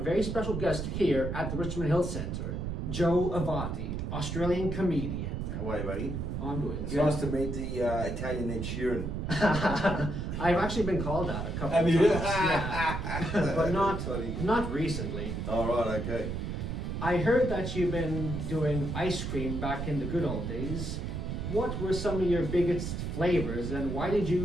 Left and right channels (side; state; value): right; noise; rumble, 3 dB below the sound